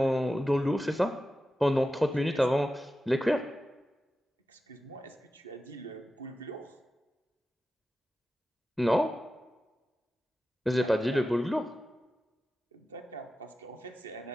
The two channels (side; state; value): both; normal; correlation 0.93